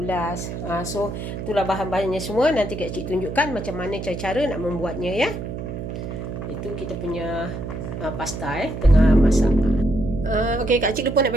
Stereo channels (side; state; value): right; noise; hum, 6 dB below the sound